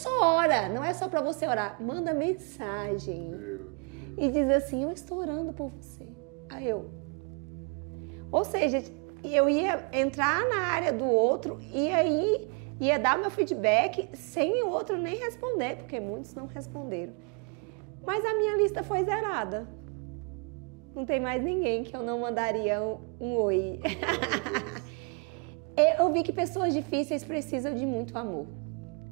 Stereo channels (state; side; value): quieter; left; 37.0 dB